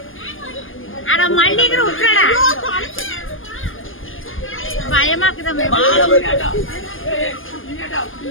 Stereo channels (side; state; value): right; late; 0.59 ms